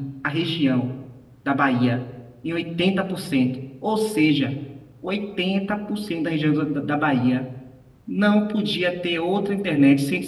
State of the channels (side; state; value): both; identical; correlation 1.00